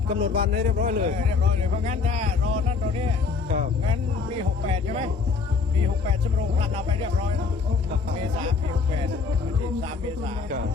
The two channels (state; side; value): quieter; right; 4.9 dB